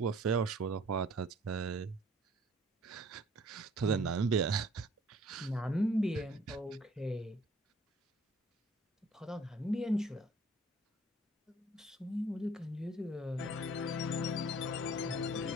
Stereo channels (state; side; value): normal; both; correlation 0.55